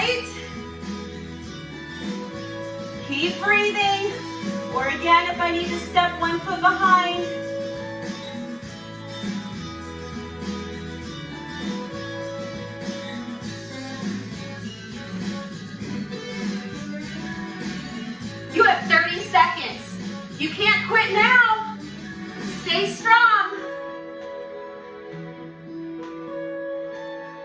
Keep breathing. Or again, if I need to step 1 foot behind. You have 30 seconds. You can't quit now. Stay strong.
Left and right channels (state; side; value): identical; both; correlation 1.00